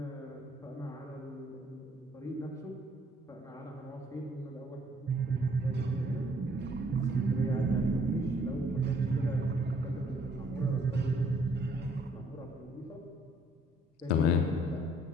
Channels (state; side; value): normal; both; correlation 0.63